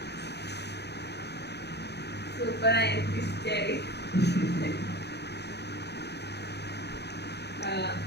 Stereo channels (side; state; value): right; late; 0.49 ms